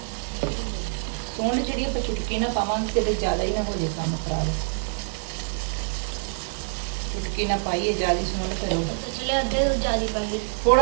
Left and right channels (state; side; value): silent; left; digital silence